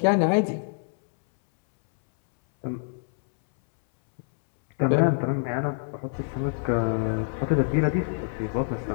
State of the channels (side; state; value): right; silent; 61 dB below the other